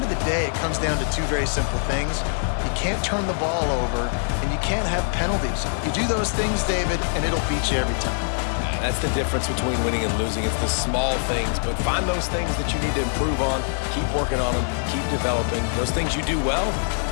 of the day, it comes down to two very simple things. You can't turn the ball over, and you can't have penalties. You do those things, David, and it'll beat you every time. That's the difference between winning and losing. It's the small things, but find those things that you need to improve on, keep working on them, keep developing. Those things you do well,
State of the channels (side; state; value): right; silent; digital silence